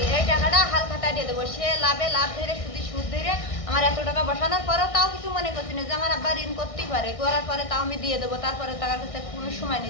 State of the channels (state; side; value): late; right; 1.6 ms